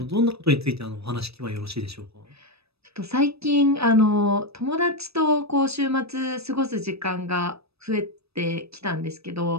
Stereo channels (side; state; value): left; late; 0.78 ms